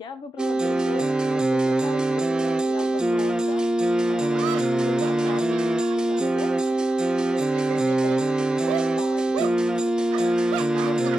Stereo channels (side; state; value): both; normal; correlation 0.91